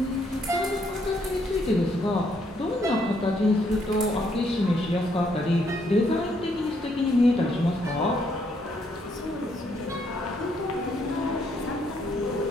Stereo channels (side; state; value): both; normal; correlation 0.72